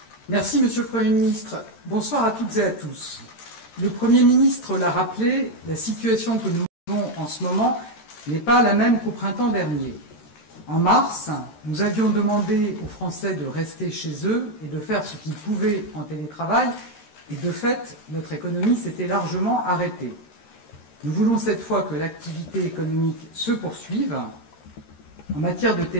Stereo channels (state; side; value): late; right; 13 ms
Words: Merci, Monsieur le Premier ministre. Bonsoir à toutes et à tous. Le Premier ministre l'a rappelé, la situation que nous vivons en ce moment n'est pas la même qu'au printemps dernier. En mars, nous avions demandé aux Français de rester chez eux et de faire ce qu'ils pouvaient en télétravail, et de fait, notre économie s'était largement arrêtée. Nous voulons cette fois que l'activité économique se poursuive. En matière de